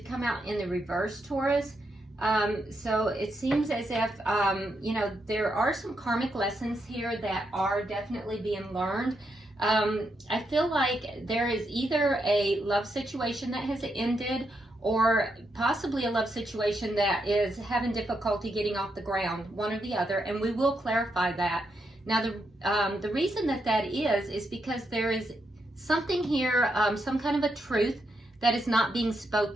come out in the reverse, Taurus. So it seems as if, there are some karmic lessons here that are definitely being learned. I feel like there is either a love situation that has ended, or possibly a love situation that is having difficulty getting off the ground, one or the other, and we will clarify that. Now, the reason that is because there is something here, some kind of a truth that is not being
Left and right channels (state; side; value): normal; both; correlation 0.81